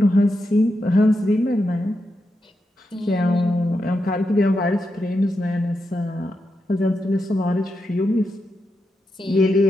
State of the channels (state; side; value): normal; both; correlation 0.86